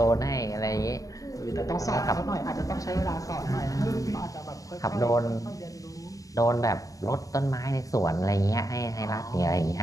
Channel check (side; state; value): right; late; 0.16 ms